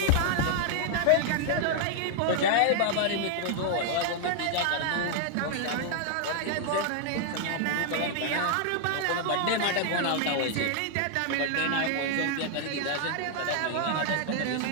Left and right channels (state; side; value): different; both; correlation 0.00